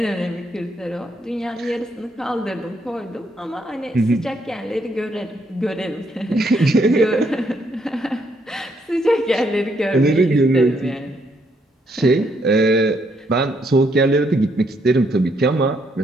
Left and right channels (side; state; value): both; normal; correlation 0.73